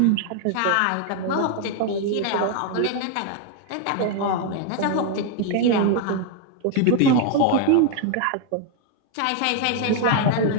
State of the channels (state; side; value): different; both; correlation 0.00